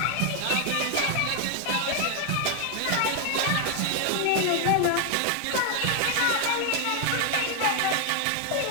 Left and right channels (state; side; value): different; both; correlation 0.00